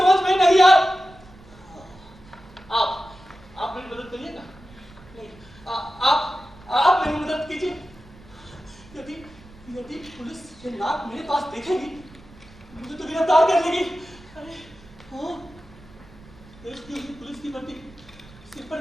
में नहीं आ। आप मेरी मदद करिएगा? नहीं, आप मेरी मदद कीजिए। यदि पुलिस ये नाक मेरे पास देखेगी मुझे तो गिरफ्तार कर लेगी। अरे हाँ, देश की पुलिस की वर्दी, सिर पर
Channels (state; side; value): noise; right; rumble, 23 dB below the sound